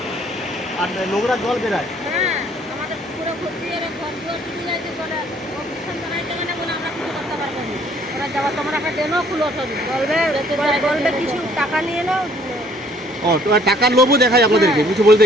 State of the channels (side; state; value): both; normal; correlation 0.60